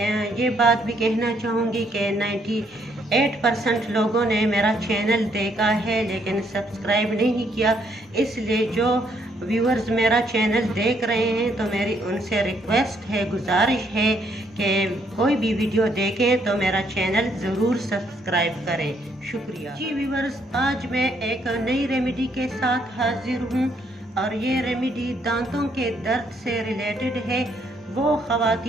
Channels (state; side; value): normal; both; correlation 0.71